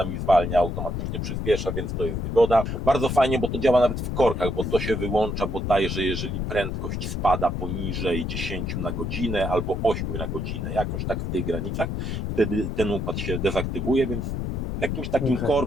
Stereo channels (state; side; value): noise; left; rumble, 2 dB below the sound